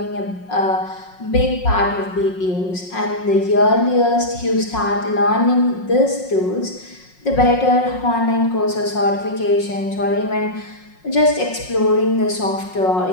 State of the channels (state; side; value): late; right; 5.5 ms